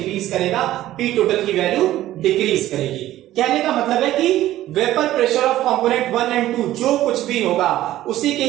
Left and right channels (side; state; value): left; quieter; 14.3 dB